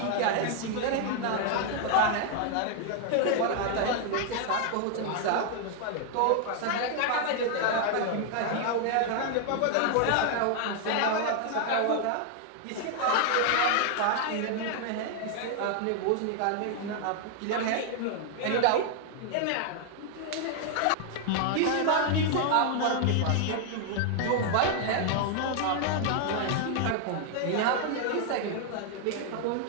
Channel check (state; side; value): different; both; correlation 0.00